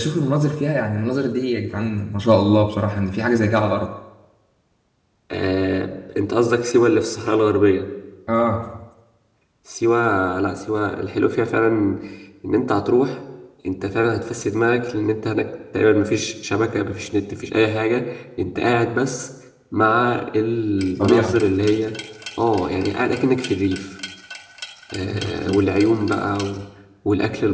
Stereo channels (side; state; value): both; identical; correlation 1.00